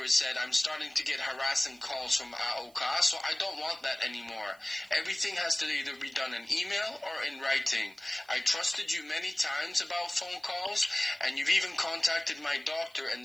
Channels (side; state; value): right; noise; hiss, 28 dB below the sound